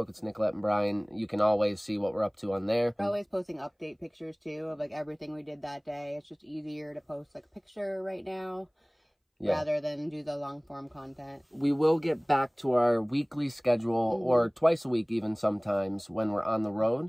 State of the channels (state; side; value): identical; both; correlation 1.00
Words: it's Nicolette and Brian, you can always see what we're up to on there. We're always posting update pictures too of like everything we did that day. It's just easier to post like a picture right now. Yeah. Rather than do the long form content. We will get back to our weekly schedule or twice a week even sometimes when we're on the road.